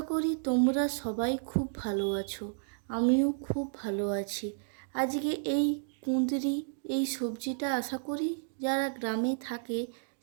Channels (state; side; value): silent; left; digital silence